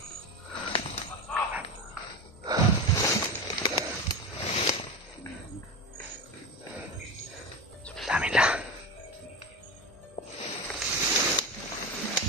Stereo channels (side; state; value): both; normal; correlation 0.22